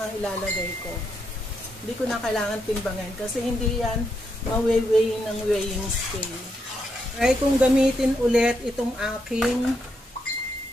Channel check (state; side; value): normal; both; correlation 0.81